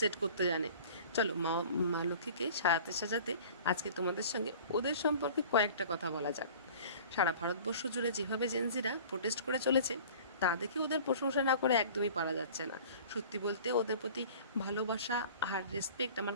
করতে জানে। চলো মা মা লক্ষ্মীকে সাজাতে সাজাতে আজকে তোমাদের সঙ্গে ওদের সম্পর্কে কয়েকটা কথা বলা যাক। সারা ভারতবর্ষ জুড়ে যেভাবে জেনজিরা প্রোটেস্ট করে চলেছে তা দেখে ওদের প্রশংসা না করে একদমই পারা যাচ্ছে না। সত্যি বলতে ওদের প্রতি ভালোবাসা আর রেসপেক্ট আমার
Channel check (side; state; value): both; inverted; correlation -0.45